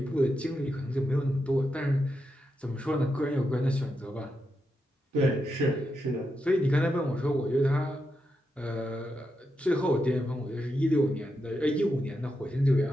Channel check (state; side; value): normal; both; correlation 0.85